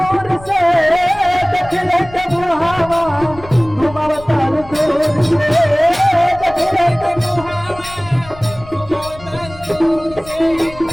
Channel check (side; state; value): left; noise; rumble, 18 dB below the sound